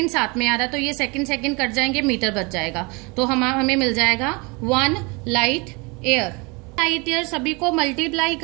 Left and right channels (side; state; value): left; quieter; 28.5 dB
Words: साथ में आ रहा है, तो ये सेकंड कट जाएंगे, मीटर बच जाएगा. तो हमें मिल जाएगा 1 लाइट ईयर. लाइट ईयर सभी को मल्टीप्लाई